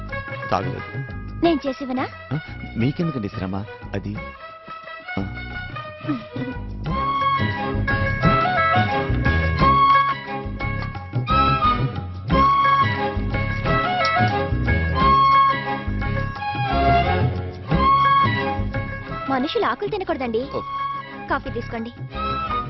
తాగలేదు. నేను చేసివనా? మీకెందుకండి శ్రమ? అది మనుషులు ఆకులు తినకూడదండి. కాఫీ తీసుకోండి.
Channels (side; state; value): both; identical; correlation 1.00